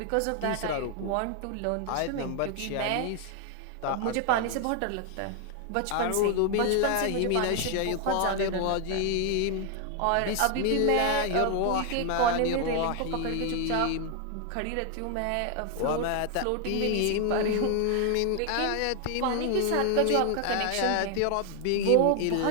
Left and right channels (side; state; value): both; different; correlation 0.00